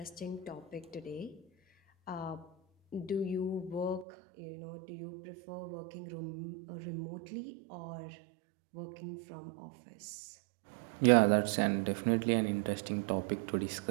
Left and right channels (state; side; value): drops out; left; at 4.0 s